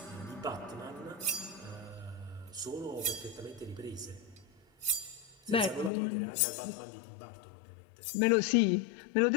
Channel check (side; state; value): right; drops out; at 5.9 s